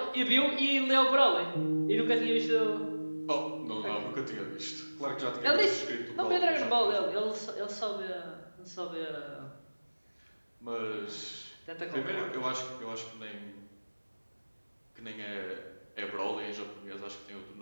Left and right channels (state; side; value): inverted; both; correlation -1.00